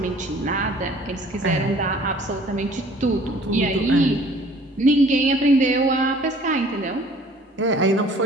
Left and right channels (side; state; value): both; normal; correlation 0.53